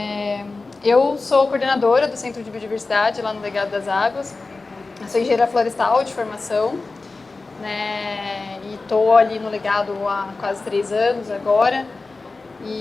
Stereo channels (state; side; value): quieter; right; 3.7 dB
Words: Eu sou coordenadora do Centro de Biodiversidade lá no Legado das Águas. Eu sou engenheira florestal de formação, né, e estou ali no Legado há quase 3 anos agora.